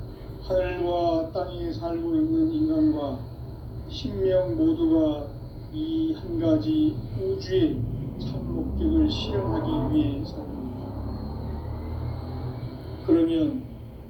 하늘과 땅에 살고 있는 인간과 신명 모두가 이 한 가지 우주의 참 목적을 실현하기 위해 삽니다. 그러면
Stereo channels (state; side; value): identical; both; correlation 1.00